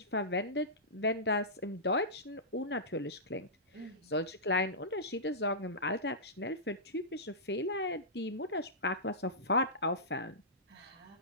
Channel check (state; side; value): normal; both; correlation -0.18